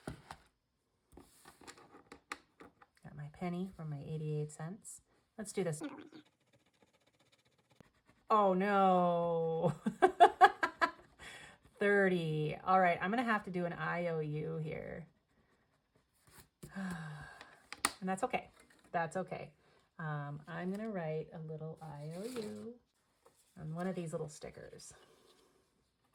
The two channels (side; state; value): both; identical; correlation 1.00